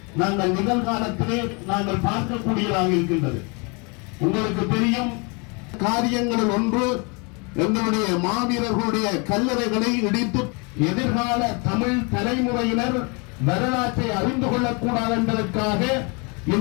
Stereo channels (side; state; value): right; quieter; 31.8 dB